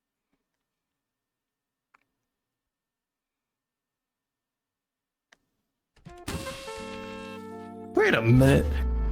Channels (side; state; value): both; identical; correlation 1.00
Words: Wait a minute.